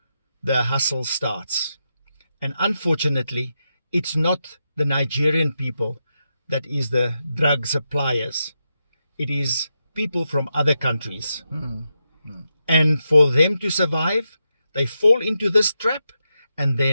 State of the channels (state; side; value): inverted; both; correlation -0.86